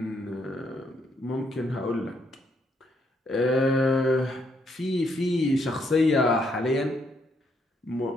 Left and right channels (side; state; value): both; normal; correlation 0.74